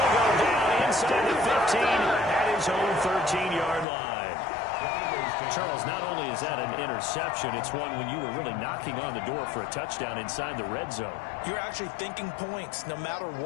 go down inside the 15 at his own 13-yard line. Charles, not only is that an interception, it's one when you were really knocking on the door for a touchdown inside the red zone. You're actually thinking points. No matter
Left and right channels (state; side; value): drops out; right; at 3.9 s